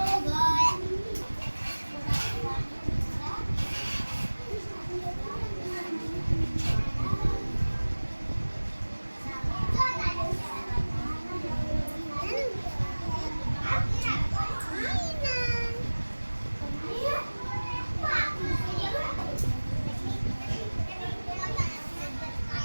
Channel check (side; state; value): both; inverted; correlation -1.00